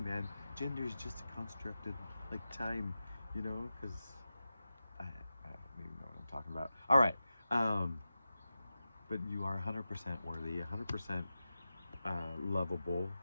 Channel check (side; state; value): both; inverted; correlation -0.93